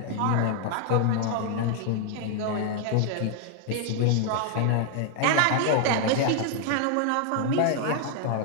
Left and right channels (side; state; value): both; different; correlation 0.00